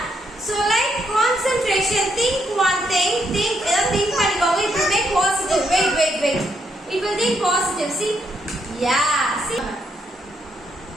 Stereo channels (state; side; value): normal; both; correlation 0.77